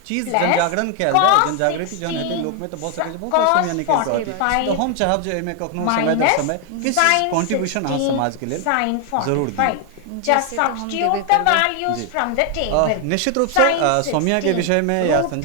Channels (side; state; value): both; different; correlation 0.00